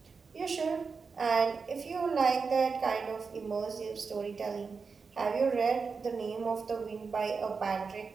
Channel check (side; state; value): left; quieter; 5.0 dB